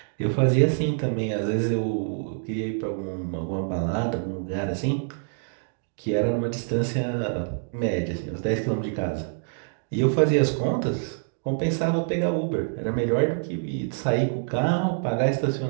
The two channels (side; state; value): left; silent; digital silence